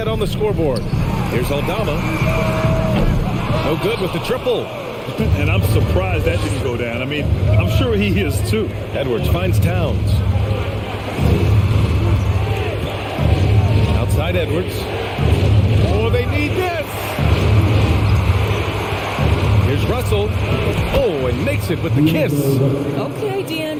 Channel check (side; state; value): both; identical; correlation 1.00